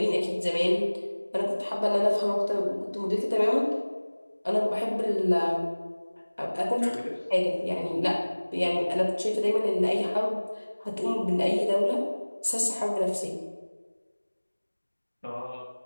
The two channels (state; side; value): inverted; both; correlation -1.00